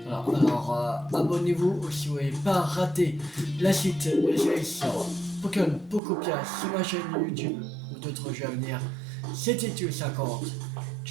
Alors abonnez-vous si vous n'avez pas raté la suite des séries sur Pokémon Pokopia sur ma chaîne YouTube ou d'autres jeux à venir. C'était Tuel50.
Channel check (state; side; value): drops out; left; at 6.0 s